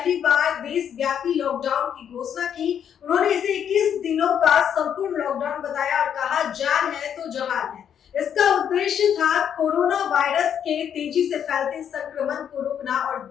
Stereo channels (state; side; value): quieter; right; 8.7 dB